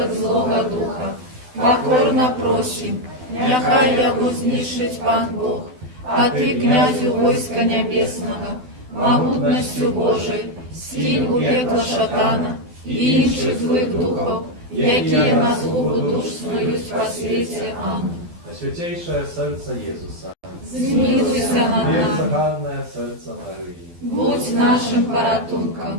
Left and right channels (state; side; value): late; left; 12 ms